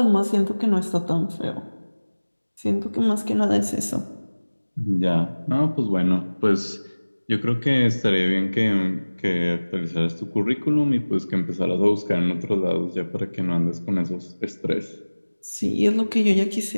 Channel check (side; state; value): both; inverted; correlation -1.00